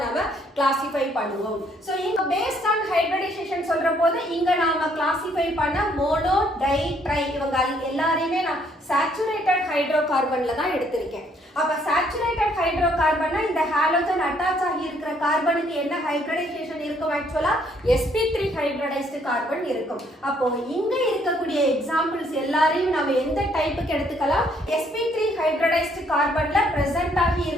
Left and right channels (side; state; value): both; normal; correlation 0.67